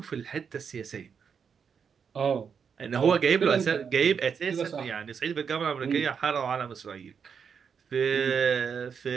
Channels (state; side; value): quieter; left; 6.6 dB